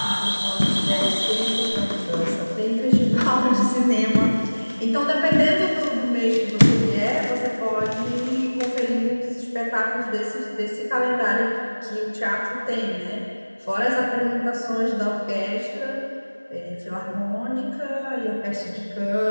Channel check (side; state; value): both; inverted; correlation -1.00